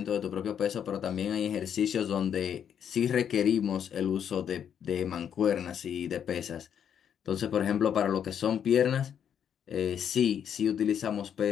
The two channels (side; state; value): right; quieter; 8.6 dB